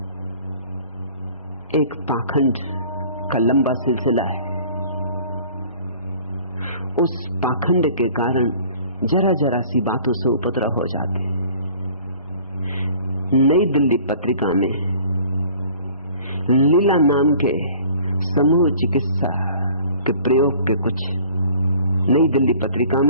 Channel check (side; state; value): both; inverted; correlation -0.50